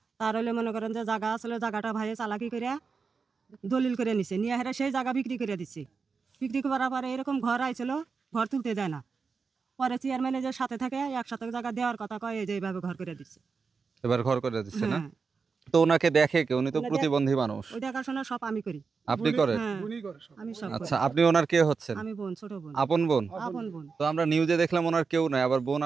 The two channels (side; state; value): left; quieter; 5.1 dB